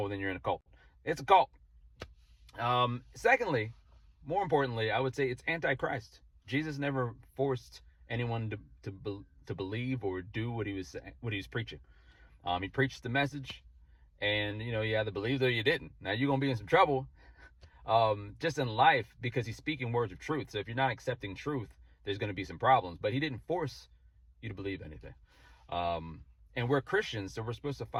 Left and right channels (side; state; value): both; identical; correlation 1.00